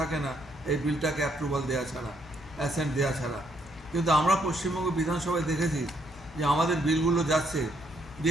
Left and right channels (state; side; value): normal; both; correlation 0.72